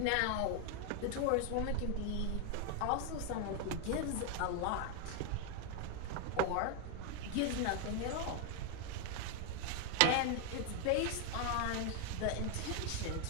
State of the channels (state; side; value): different; both; correlation 0.01